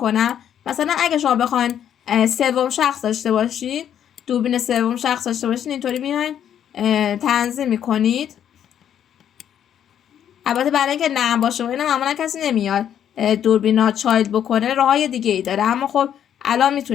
مثلا اگه شما بخواین سوم شخص داشته باشین، دوربین سوم شخص داشته باشین، اینطوری میاین تنظیم میکنید. البته برای اینکه نرم باشه و اینا معمولا کسی نمیاد دوربینا چایلد بکنه، راههای دیگه ای داره، اما خب الان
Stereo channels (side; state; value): right; quieter; 9.6 dB